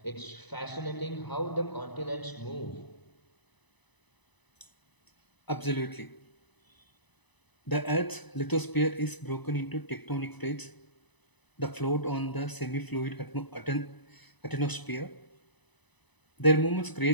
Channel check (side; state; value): right; late; 1.0 ms